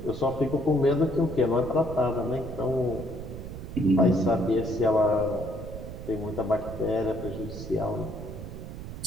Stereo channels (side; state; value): right; noise; rumble, 10 dB below the sound